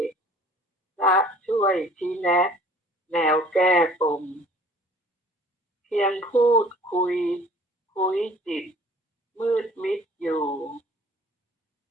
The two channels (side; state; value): both; normal; correlation 0.51